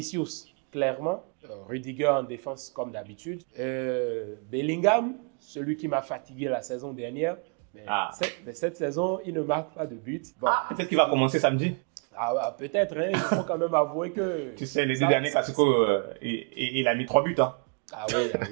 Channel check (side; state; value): left; quieter; 38.2 dB